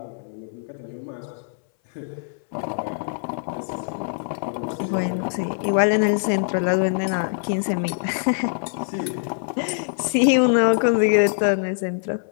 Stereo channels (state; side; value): silent; right; 61 dB below the other